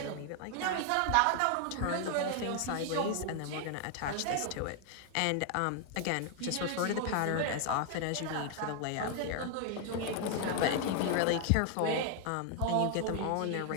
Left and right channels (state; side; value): different; both; correlation 0.00